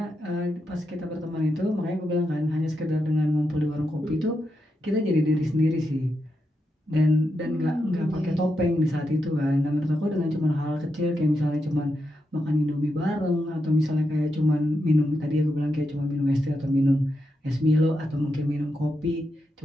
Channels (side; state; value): both; normal; correlation 0.85